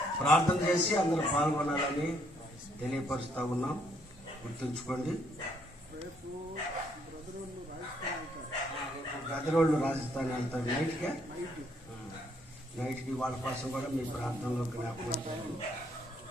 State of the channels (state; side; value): normal; both; correlation 0.70